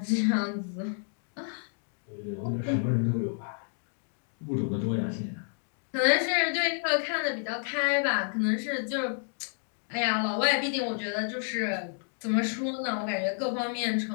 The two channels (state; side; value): silent; right; digital silence